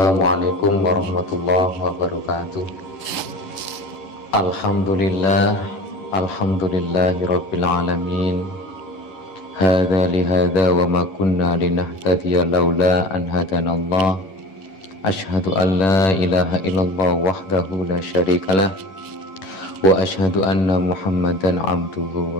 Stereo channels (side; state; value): right; late; 11 ms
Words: Assalamualaikum warahmatullahi wabarakatuh. Alhamdulillahirabbil alamin. Hadza li hadza wa ma kunna linahtadiya laula an hadanallah. Asyhadu an la ilaha illallah wahdahu la syarikalah wa asyhadu anna Muhammadan abduhu